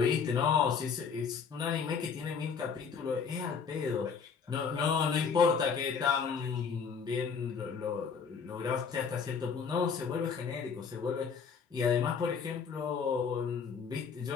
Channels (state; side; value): quieter; right; 6.0 dB